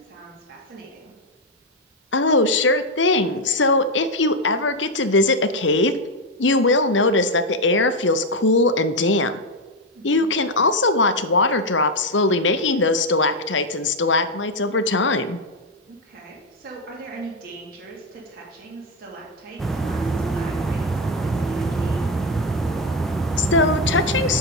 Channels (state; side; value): normal; both; correlation 0.05